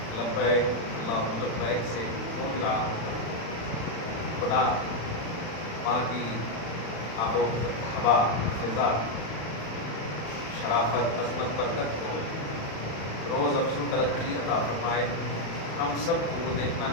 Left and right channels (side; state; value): right; late; 36 ms